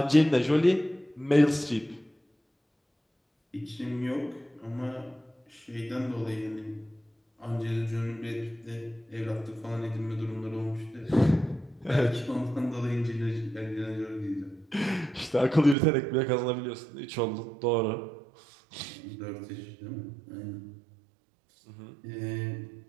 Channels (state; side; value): drops out; left; at 15.8 s